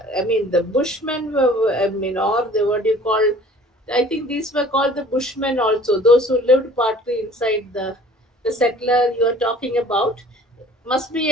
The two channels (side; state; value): both; normal; correlation 0.50